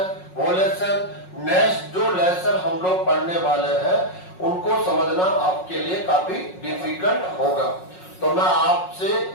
वो लेसन नेक्स्ट जो लेसन हम लोग पढ़ने वाले हैं उनको समझना आपके लिए काफी डिफिकल्ट होगा। तो मैं आपसे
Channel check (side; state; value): right; late; 5.5 ms